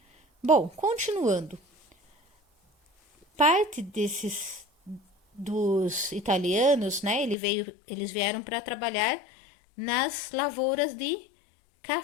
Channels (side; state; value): right; drops out; at 7.4 s